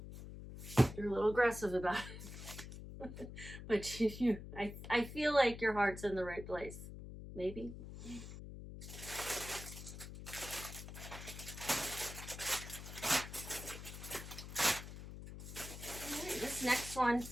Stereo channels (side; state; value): left; noise; hum, 11 dB below the sound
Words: You're a little aggressive about it. But I feel like your heart's in the right place. Maybe. Right, this next one,